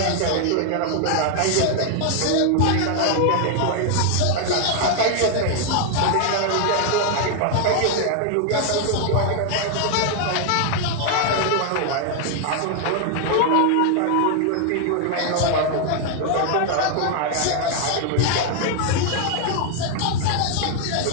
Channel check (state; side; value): different; both; correlation 0.00